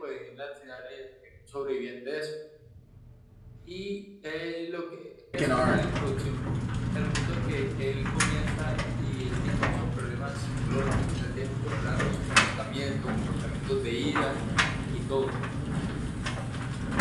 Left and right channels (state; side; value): identical; both; correlation 1.00